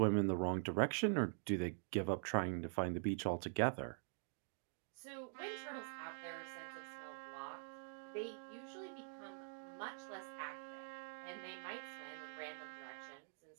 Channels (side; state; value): left; silent; digital silence